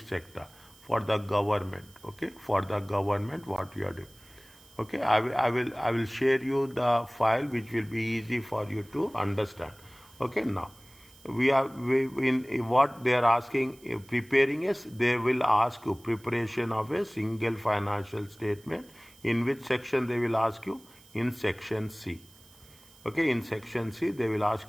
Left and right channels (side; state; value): right; noise; hiss, 25 dB below the sound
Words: for the government. Okay, for the government, what you are doing. Okay, I will share you the file, which will be easy for you to understand. Okay, now in what they are asking, preparing is, they will ask you preparation of a single financial statement. In which section they will ask you? In section C. Okay, in section C they will ask